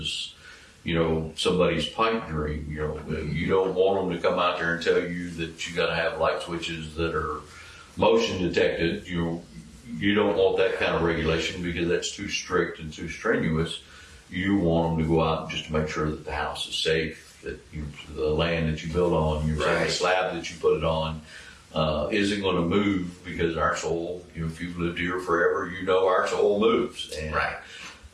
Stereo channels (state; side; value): identical; both; correlation 1.00